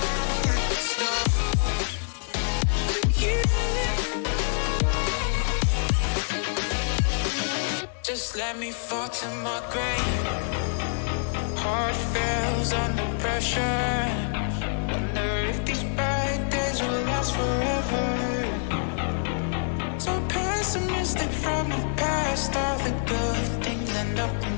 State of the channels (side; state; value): right; silent; digital silence